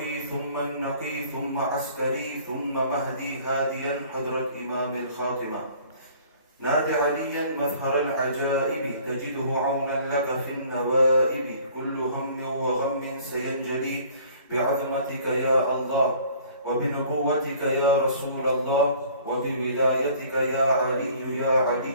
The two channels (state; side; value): inverted; both; correlation -0.53